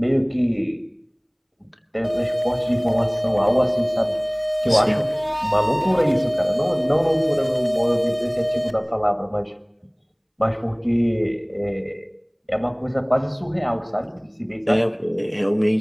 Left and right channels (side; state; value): both; identical; correlation 1.00